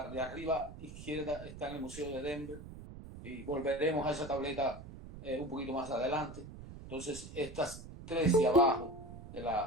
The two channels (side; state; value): right; noise; rumble, 13 dB below the sound